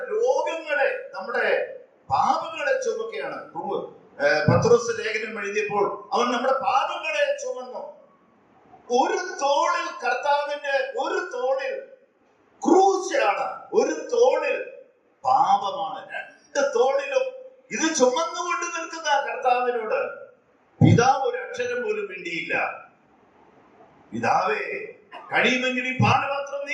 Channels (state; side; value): identical; both; correlation 1.00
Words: രോഗങ്ങളെ, നമ്മുടെ പാപങ്ങളെ ചുമക്കുകയാണ്. പത്രോസ് ലേഖനം എഴുതിയപ്പോൾ അവൻ നമ്മുടെ പാപങ്ങളെ ചുമന്നു. ഒരു തോളിൽ കർത്താവിന്റെ, ഒരു തോളിൽ ക്രൂശാണ്, ഒരു തോളിൽ പാപമാണ്. 2 തോളിലും ഇത് ചുമന്നുകൊണ്ട് നിൽക്കുന്ന കർത്താവിനോട് പിതാവ് ഒരു അക്ഷരം പോലും മിണ്ടിയില്ല. പിതാവേ, കഴിയുമെങ്കിൽ ഈ പാനപാത്രം